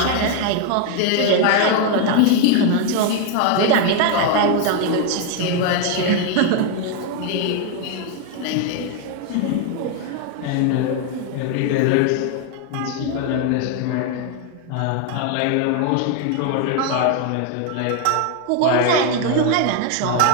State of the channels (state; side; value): different; both; correlation 0.01